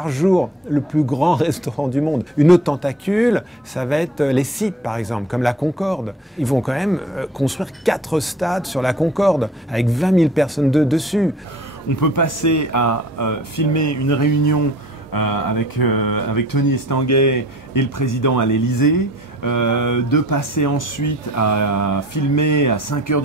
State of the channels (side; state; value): both; normal; correlation 0.49